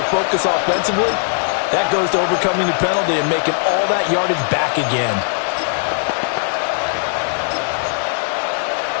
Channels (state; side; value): silent; right; digital silence